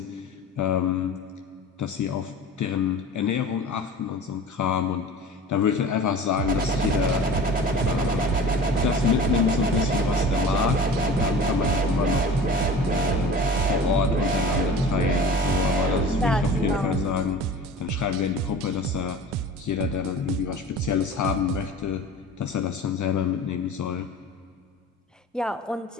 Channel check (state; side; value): normal; both; correlation 0.39